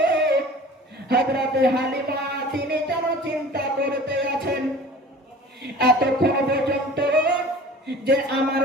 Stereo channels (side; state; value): both; normal; correlation 0.43